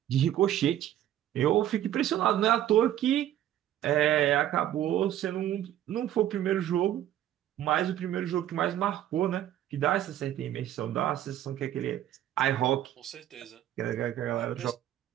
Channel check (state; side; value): quieter; left; 12.0 dB